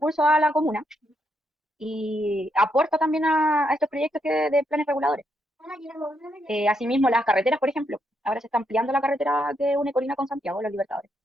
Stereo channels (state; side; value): normal; both; correlation 0.78